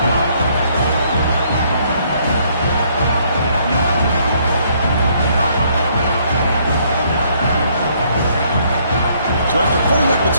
So after putting up the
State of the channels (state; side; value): inverted; both; correlation -0.66